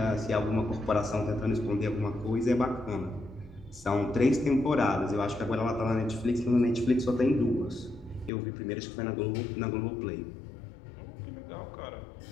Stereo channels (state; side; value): drops out; right; at 8.3 s